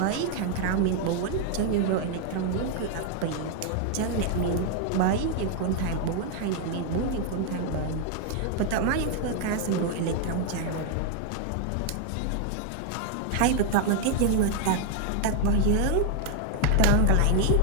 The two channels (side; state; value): both; different; correlation 0.00